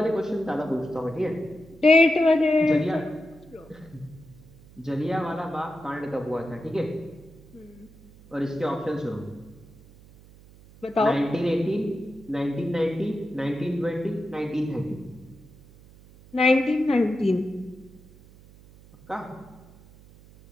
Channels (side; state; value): right; noise; hum, 23 dB below the sound